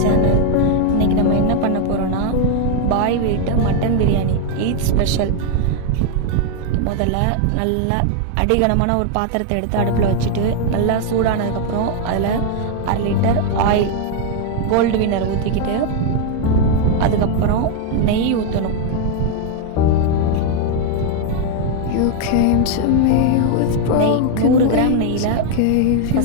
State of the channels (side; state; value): both; different; correlation 0.00